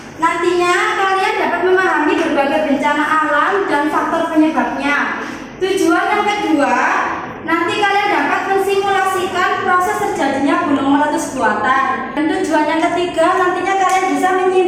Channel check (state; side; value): identical; both; correlation 1.00